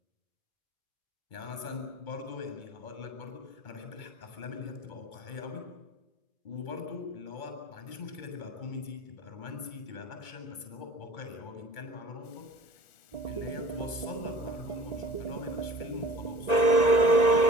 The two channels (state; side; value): late; right; 2.2 ms